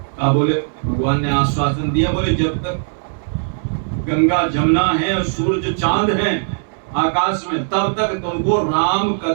बोले भगवान ने आश्वासन दिया, बोले जब तक गंगा जमुना है और सूरज चांद है आकाश में, तब तक तुमको राम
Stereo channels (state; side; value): silent; left; digital silence